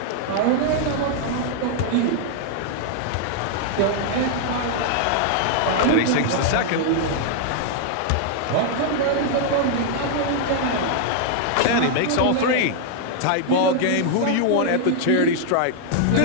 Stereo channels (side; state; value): both; different; correlation -0.01